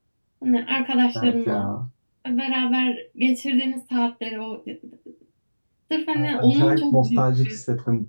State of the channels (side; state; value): both; inverted; correlation -1.00